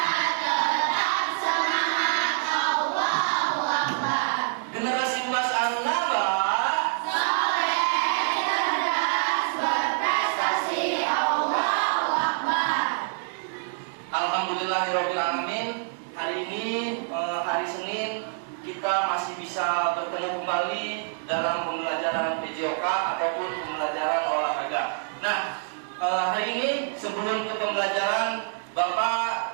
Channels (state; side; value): silent; left; digital silence